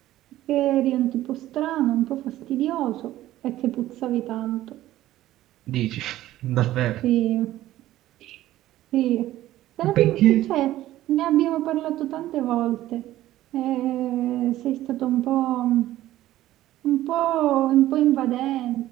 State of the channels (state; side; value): quieter; left; 14.6 dB